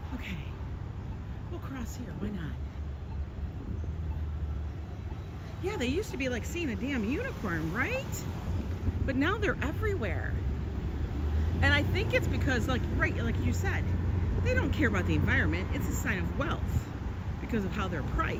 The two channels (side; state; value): both; identical; correlation 1.00